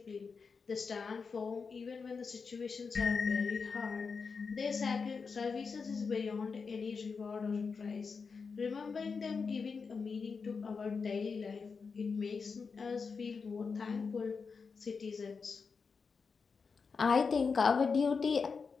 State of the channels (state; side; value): quieter; right; 5.2 dB